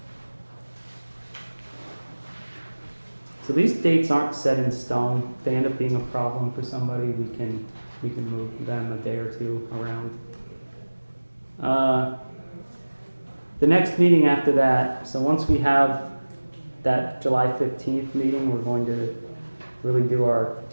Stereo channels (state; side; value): inverted; both; correlation -1.00